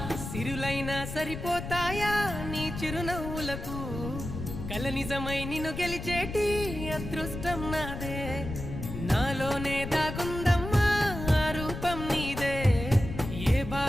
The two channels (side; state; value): left; noise; rumble, 7 dB below the sound